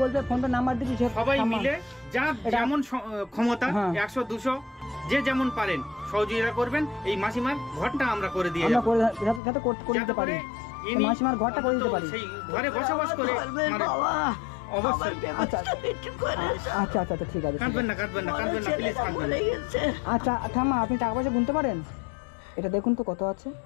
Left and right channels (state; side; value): drops out; right; at 9.4 s